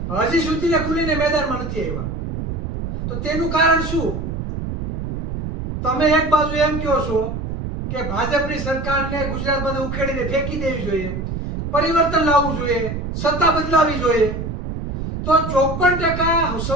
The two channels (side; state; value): right; noise; rumble, 5 dB below the sound